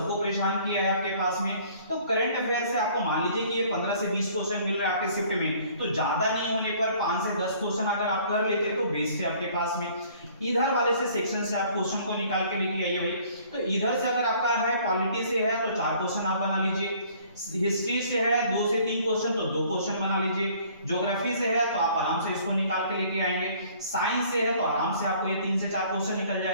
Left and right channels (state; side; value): inverted; both; correlation -0.56